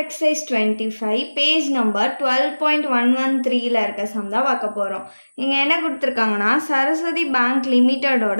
exercise 25 page number 12.113 ல இருக்க சம் தான் பார்க்க போறோம். இங்க என்ன கொடுத்திருக்காங்கன்னா சரஸ்வதி பேங்க்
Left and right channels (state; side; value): inverted; both; correlation -1.00